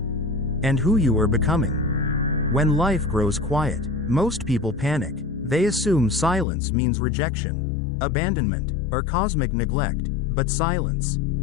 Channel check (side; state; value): right; drops out; at 6.5 s